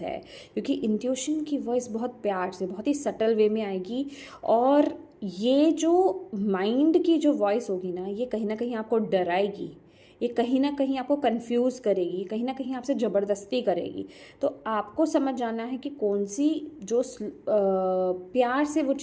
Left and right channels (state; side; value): identical; both; correlation 1.00